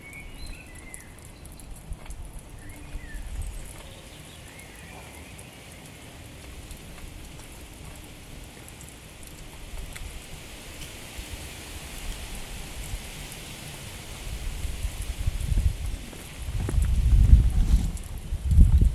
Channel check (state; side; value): identical; both; correlation 1.00